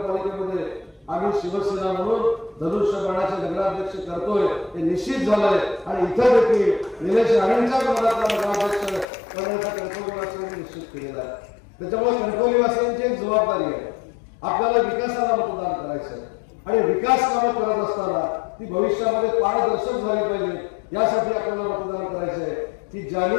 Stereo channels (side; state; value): right; drops out; at 9.1 s